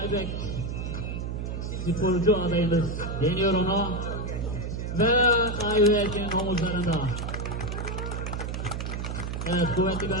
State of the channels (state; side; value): noise; right; hum, 4 dB below the sound